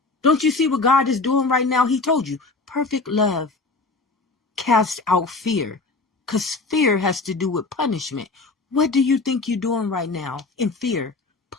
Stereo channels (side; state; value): right; quieter; 3.7 dB